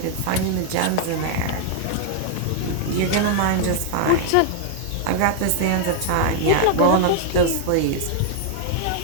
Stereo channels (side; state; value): both; different; correlation 0.00